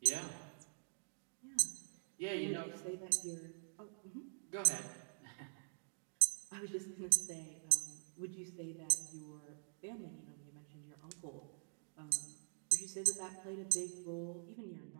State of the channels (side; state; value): left; silent; digital silence